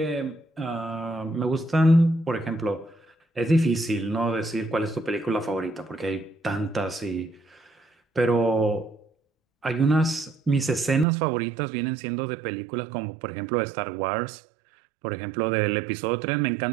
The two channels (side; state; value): left; drops out; at 11.1 s